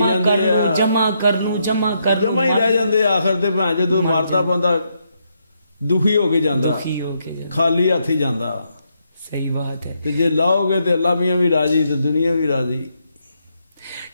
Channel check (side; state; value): both; inverted; correlation -0.78